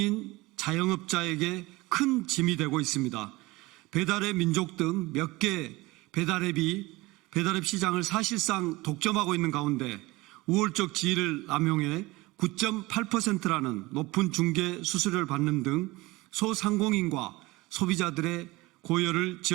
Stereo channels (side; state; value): left; quieter; 21.3 dB